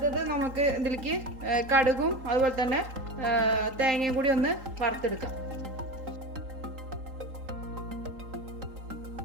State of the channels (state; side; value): late; left; 3.8 ms